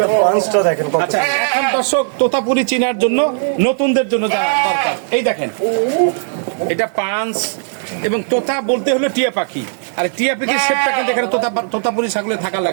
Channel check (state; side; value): silent; left; digital silence